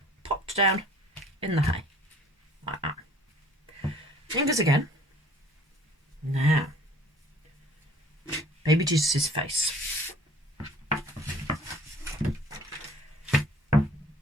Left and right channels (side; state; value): both; normal; correlation 0.53